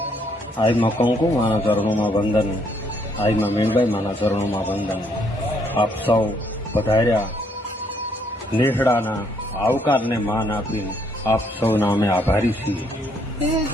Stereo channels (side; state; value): both; normal; correlation 0.70